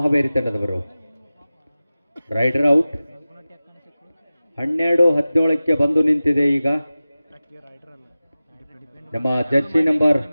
ಹಾವೇರಿ ತಂಡದವರು. Rider out. 12-17ಕ್ಕೆ ಬಂದು ನಿಂತಿದೆ. ಈಗ ನಮ್ಮ ಜರ್ಸಿ ನಂಬರ್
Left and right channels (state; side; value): inverted; both; correlation -0.96